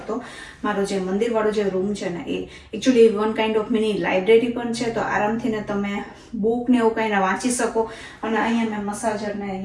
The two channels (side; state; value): both; identical; correlation 1.00